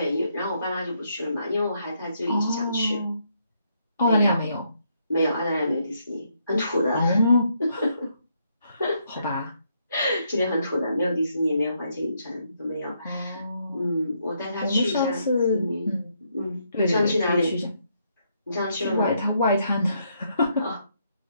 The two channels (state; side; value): inverted; both; correlation -0.75